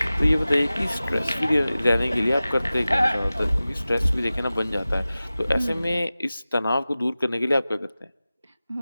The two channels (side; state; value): both; inverted; correlation -0.96